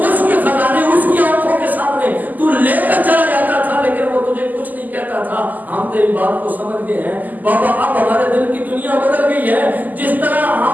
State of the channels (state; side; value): late; left; 0.083 ms